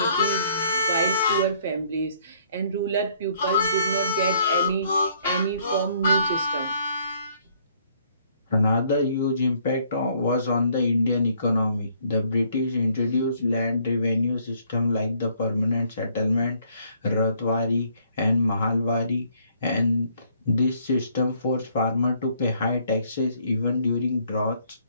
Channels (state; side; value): inverted; both; correlation -0.65